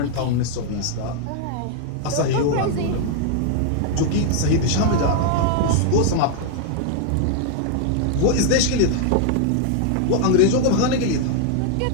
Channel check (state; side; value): different; both; correlation 0.00